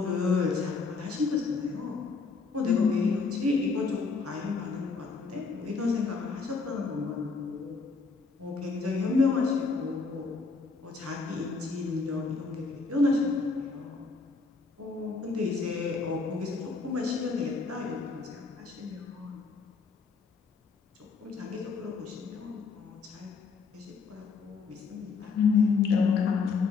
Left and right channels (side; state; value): right; quieter; 4.5 dB